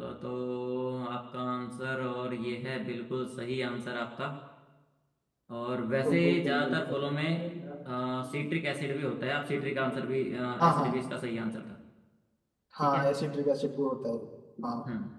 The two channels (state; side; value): identical; both; correlation 1.00